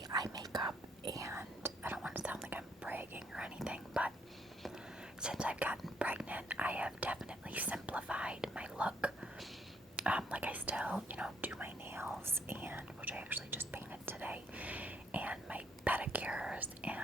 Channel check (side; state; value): both; normal; correlation 0.69